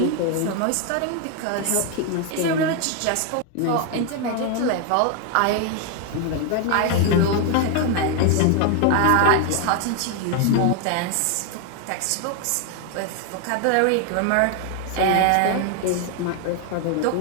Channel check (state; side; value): different; both; correlation 0.01